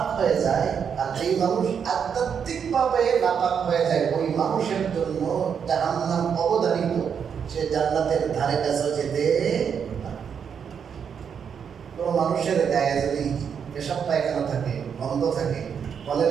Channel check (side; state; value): left; quieter; 7.3 dB